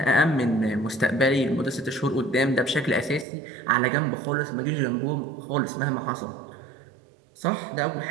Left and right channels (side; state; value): left; drops out; at 3.2 s